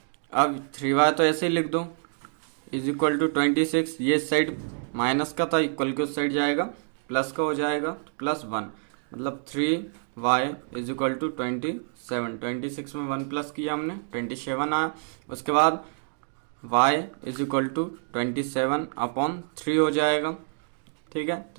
अब 3y तो ऐसे ही लिख दो इज इक्वल टू 26। ये साइड माइनस का था, इक्वल के उस साइड जाएगा प्लस का हो जाएगा, +1 मतलब 3y इज इक्वल टू 27। 26 में 1 प्लस किया हमने, 27 आया। उसके बाद y इज इक्वल टू 27/3 हो जाएगा। ठीक है,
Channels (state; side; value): silent; left; digital silence